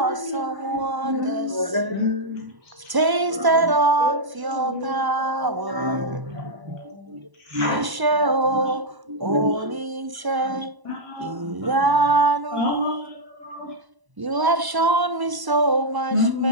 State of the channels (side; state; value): left; late; 1.0 ms